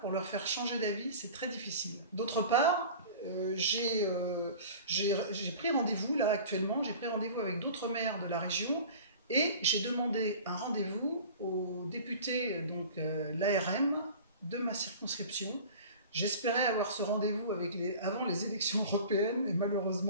pour leur faire changer d'avis, c'est très difficile. D'autre part, j'ai pris rendez-vous, là actuellement, j'ai pris rendez-vous avec d'autres maires de la région et j'ai demandé un rendez-vous aux députés, donc l'ARM, de ma circonscription. J'espérais avoir ce rendez-vous avant les élections européennes, et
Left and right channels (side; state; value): both; inverted; correlation -0.40